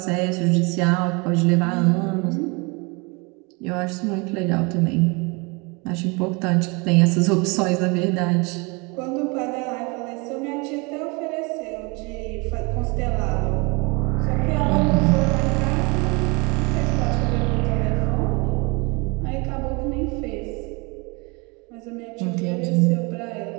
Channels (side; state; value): left; quieter; 28.8 dB